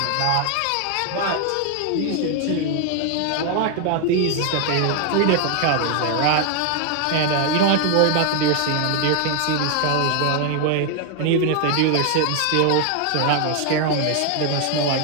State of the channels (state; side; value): different; both; correlation 0.00